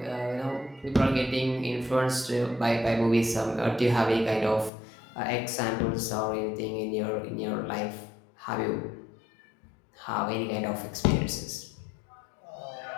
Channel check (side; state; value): right; drops out; at 4.7 s